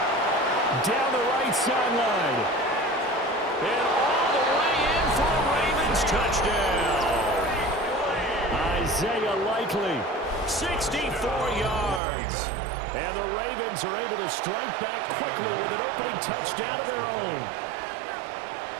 Down the right sideline. And all the way in for a Ravens touchdown. Isaiah Likely, 64 yards. And the Ravens are able to strike back quickly with an opening touchdown of their own.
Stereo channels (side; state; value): left; drops out; at 12.0 s